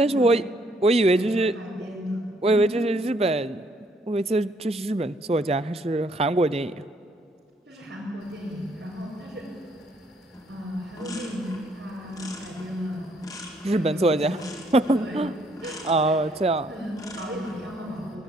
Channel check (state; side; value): normal; both; correlation 0.68